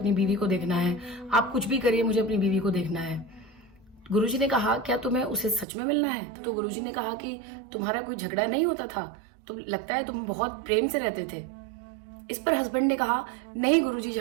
बीवी को देखना है, आप कुछ भी करिए मुझे अपनी बीवी को देखना है। गुरुजी ने कहा क्या तुम्हें उसे सच में मिलना है? तो गुरुजी ने कहा कि तुम्हारा कोई झगड़ा नहीं होता था, तो लगता है तुम बहुत प्रेम से रहते थे। इस पर हस्बैंड ने कहा नहीं गुरुजी,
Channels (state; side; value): drops out; left; at 5.7 s